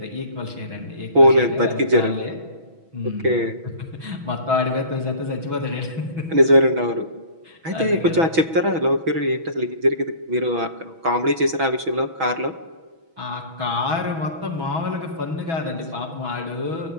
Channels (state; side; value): late; left; 6.2 ms